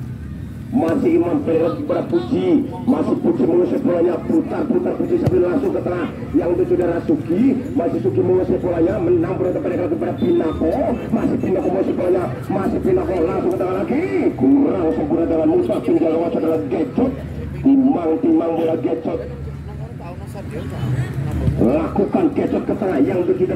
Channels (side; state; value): both; identical; correlation 1.00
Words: masih Imam pendek pada Puji, masih Puji mengusir bolanya, putar-putar Puji sambil langsung ke tengah yang itu saudara Suki, masih Suki mengusir bolanya, menang pendek lagi pada Pinako, masih Pinako mengusir bolanya, masih Pinako langsung ke tengah lagi, kurang sempurna dengan mudah tinggal lewat saudara Gecot, timang bola Gecot, lakukan Gecot ke tengah yang itu